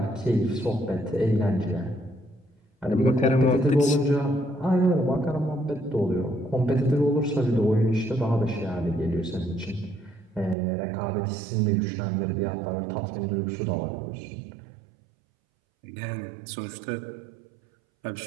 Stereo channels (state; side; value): drops out; left; at 10.6 s